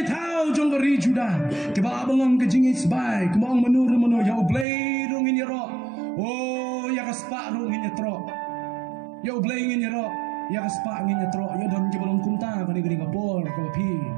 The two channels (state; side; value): drops out; left; at 4.7 s